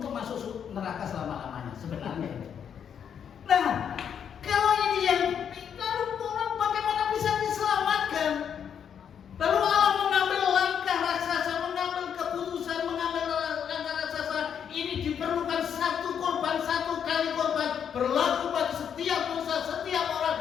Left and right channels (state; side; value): quieter; right; 8.1 dB